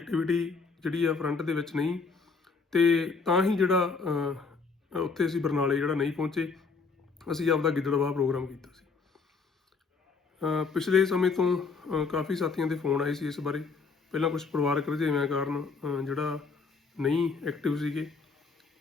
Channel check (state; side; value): quieter; right; 4.7 dB